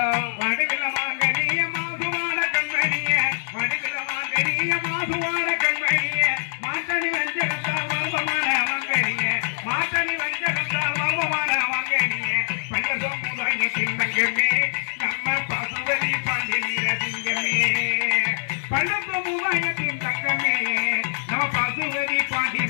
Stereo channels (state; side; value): silent; right; digital silence